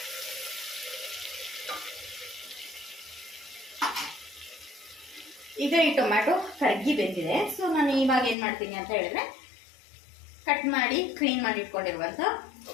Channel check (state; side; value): drops out; right; at 8.3 s